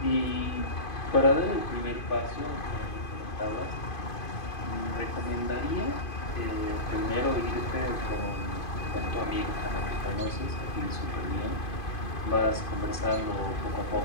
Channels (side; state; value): right; late; 2.5 ms